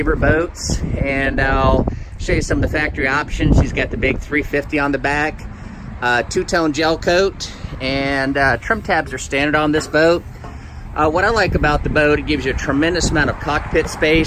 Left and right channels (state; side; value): identical; both; correlation 1.00